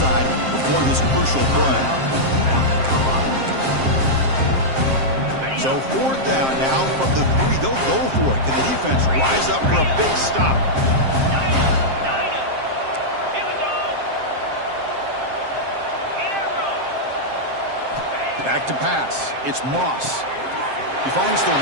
before this crucial play. So 4th down now from the 3. They'll go for it. Can the defense rise up for a big stop? Back to pass. It's Moss. He finds the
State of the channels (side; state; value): left; late; 7.6 ms